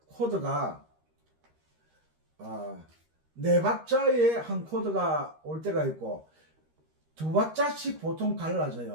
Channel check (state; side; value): late; left; 13 ms